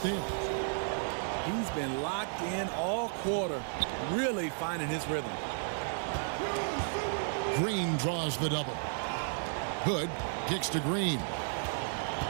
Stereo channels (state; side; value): silent; left; digital silence